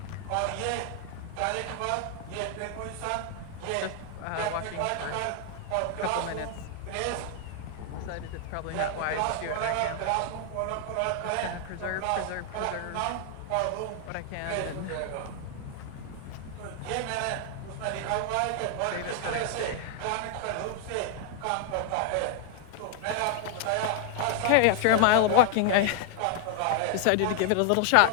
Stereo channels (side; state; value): both; different; correlation 0.00